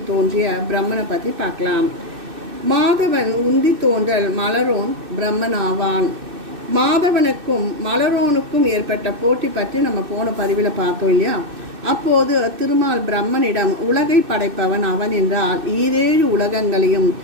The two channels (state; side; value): late; left; 2.6 ms